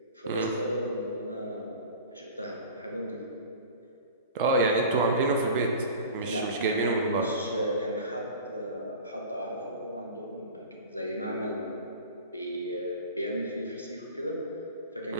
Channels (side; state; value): both; inverted; correlation -0.38